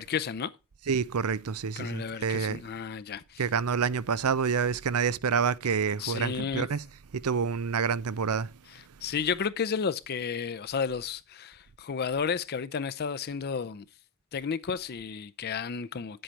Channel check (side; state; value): both; normal; correlation -0.02